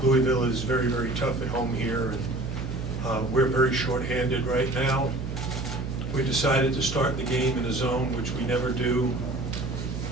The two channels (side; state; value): right; noise; hum, 6 dB below the sound